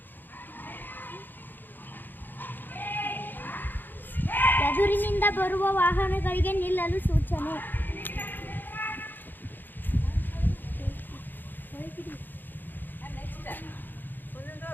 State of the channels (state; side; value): late; right; 0.091 ms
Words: ಎದುರಿನಿಂದ ಬರುವ ವಾಹನಗಳಿಗೆ ನಿಲ್ಲಲು ಸೂಚನೆ.